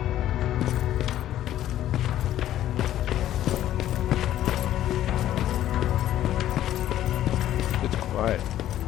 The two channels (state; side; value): quieter; right; 12.6 dB